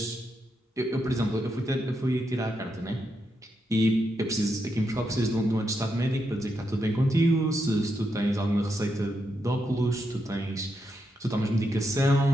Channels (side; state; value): both; normal; correlation 0.83